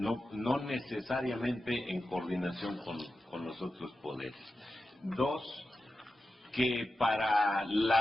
necesariamente en coordinación con los otros poderes. Dos, que para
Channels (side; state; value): both; normal; correlation 0.92